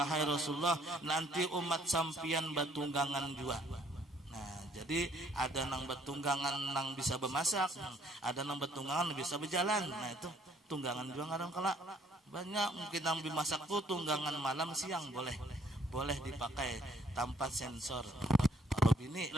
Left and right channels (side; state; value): both; normal; correlation 0.63